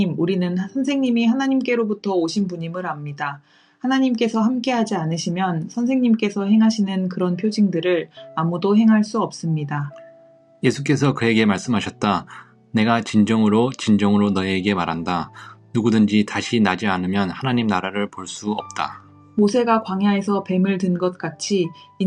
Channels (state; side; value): identical; both; correlation 1.00